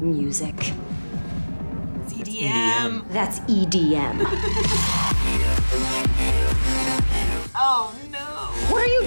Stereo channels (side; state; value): both; inverted; correlation -1.00